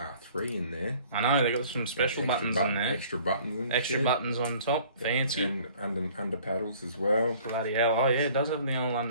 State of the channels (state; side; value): inverted; both; correlation -0.53